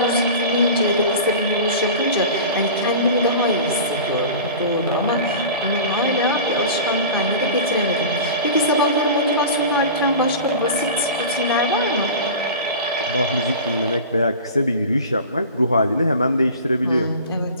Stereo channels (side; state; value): both; inverted; correlation -0.34